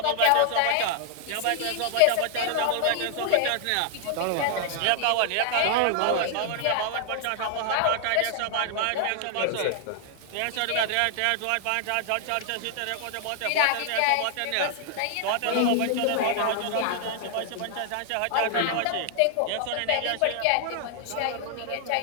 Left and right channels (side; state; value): both; different; correlation 0.00